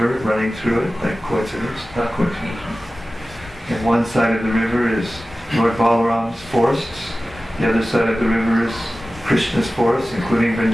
running through it, like coincidence, not coincidence. And one side of the river is Lord Balaram's forests. The other side of the river is Krishna's forests, including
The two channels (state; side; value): normal; both; correlation 0.96